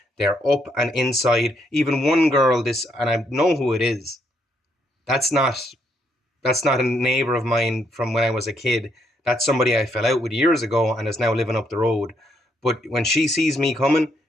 they're up and inside. Even one girl, and I know who it is. That's not a neighbor of mine from when I was a kid. That's somebody I fell out with years ago and is now living up the road. But when she sees me coming,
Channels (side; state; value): both; normal; correlation 0.74